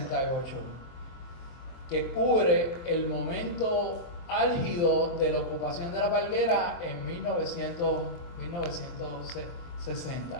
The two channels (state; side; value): late; right; 24 ms